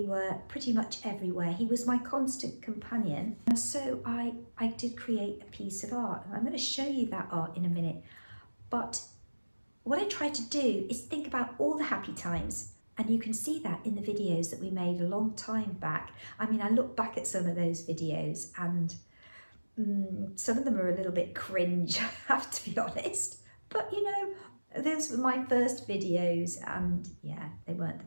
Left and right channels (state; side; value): inverted; both; correlation -1.00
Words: were pretty much everywhere. He was my constant companion. And so I did create a piece of art. And I'm going to show you that art in a minute. But what I tried to do is think about all the happy times. And you can see that in the videos that we made a long time back. I mean, I look back at some of those videos and some of them are a little bit cringe, I have to be honest. But you know, those were my first videos and yeah, they weren't